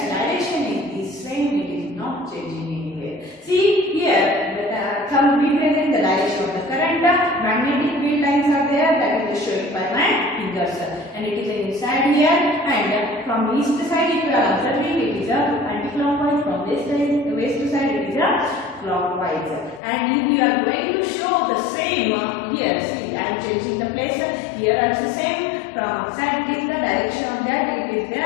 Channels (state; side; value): drops out; right; at 19.8 s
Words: direction is the same, it is not changing anywhere. See here the thumb represents the direction of the current, magnetic field lines are there that is showing by my fingers and it is inside here and from east side if you are observing it is anti-clockwise, from west side it is clockwise. And if we are going to show the same here, see I am changing the place, here also same, from outside it is the direction of that it is